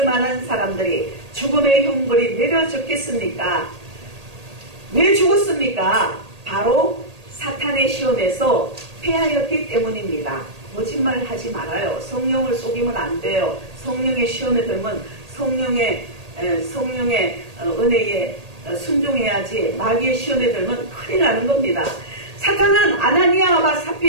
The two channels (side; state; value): left; late; 1.8 ms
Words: 만한 사람들이 죽음의 형벌이 내려졌겠습니까? 왜 죽었습니까? 바로 사탄의 시험에서 패하였기 때문입니다. 거짓말 하지 말아요. 성령을 속이면 안 돼요. 성령의 시험에 들면 성령의 은혜에 순종해야지 마귀의 시험에 들면 큰일 나는 겁니다. 사탄은 아나니아와